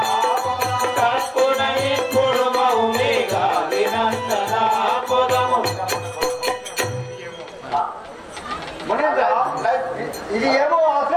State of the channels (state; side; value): identical; both; correlation 1.00